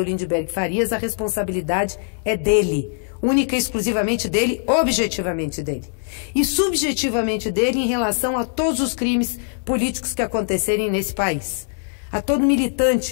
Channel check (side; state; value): right; silent; 65 dB below the other